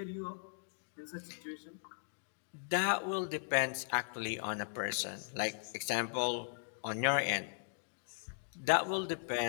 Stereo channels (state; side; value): silent; right; digital silence